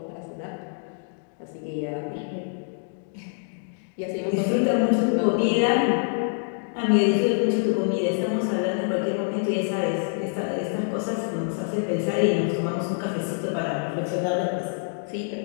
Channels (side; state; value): right; silent; digital silence